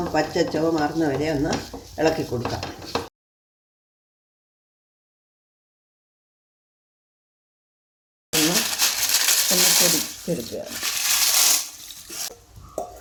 പച്ചച്ചോ മാറുന്ന വരെ ഒന്ന് ഇളക്കി കൊടുക്കാം. ഒന്ന് പൊടിച്ചെടുക്കുകയാണ്.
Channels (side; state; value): both; identical; correlation 1.00